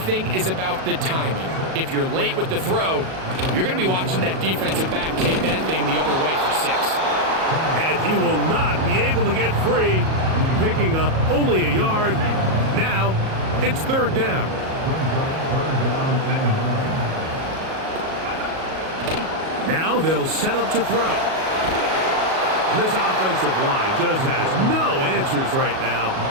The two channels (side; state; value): left; late; 37 ms